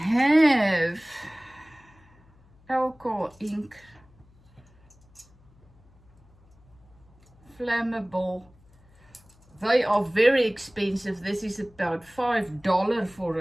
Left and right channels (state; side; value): noise; left; hum, 29 dB below the sound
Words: alcohol ink, flammable. They are very expensive. This is about $5 for